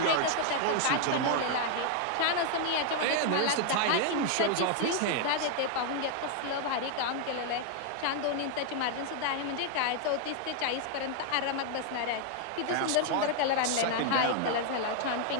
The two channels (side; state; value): both; different; correlation 0.00